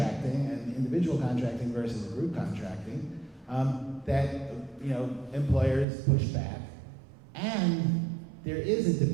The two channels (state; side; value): drops out; left; at 5.9 s